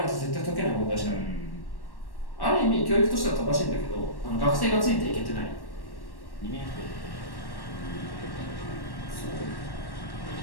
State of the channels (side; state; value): right; late; 1.1 ms